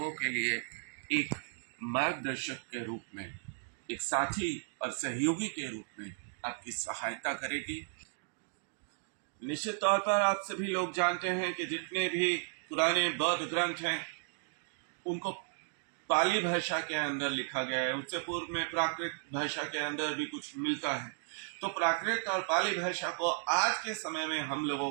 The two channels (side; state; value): left; silent; digital silence